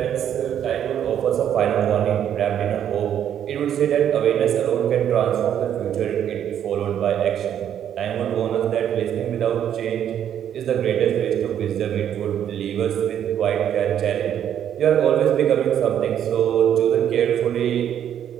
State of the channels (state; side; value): quieter; left; 9.8 dB